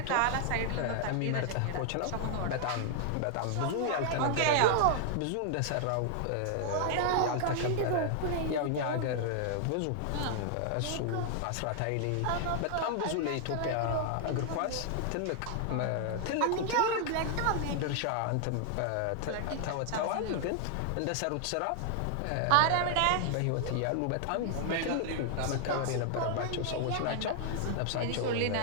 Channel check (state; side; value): different; both; correlation 0.00